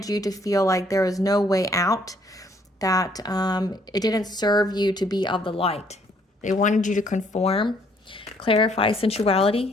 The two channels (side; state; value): both; normal; correlation 0.65